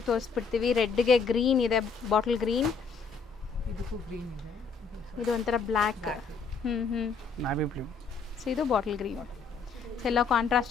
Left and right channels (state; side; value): quieter; right; 5.2 dB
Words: ತೋರಿಸ್ಬಿಡ್ತೀವಿ. ರೆಡ್ಗೆ ಗ್ರೀನ್ ಇದೆ, ಬಾಟಲ್ ಗ್ರೀನ್. ಇದು ಒಂಥರ ಬ್ಲ್ಯಾಕ್. Navy blue. ಸೊ ಇದು ಬಾಟಲ್ ಗ್ರೀನ್. ಸೊ ಎಲ್ಲ